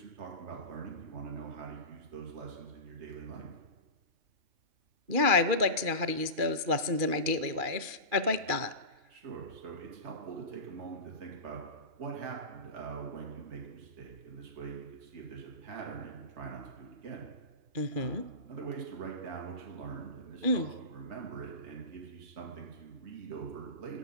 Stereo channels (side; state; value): left; late; 2.4 ms